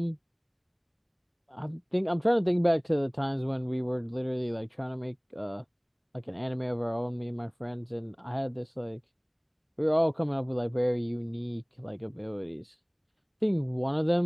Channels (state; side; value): identical; both; correlation 1.00